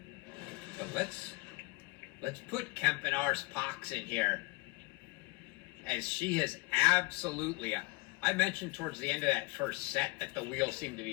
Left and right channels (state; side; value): quieter; right; 25.7 dB